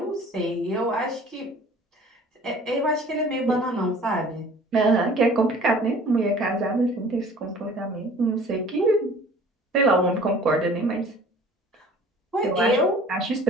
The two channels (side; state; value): both; normal; correlation 0.48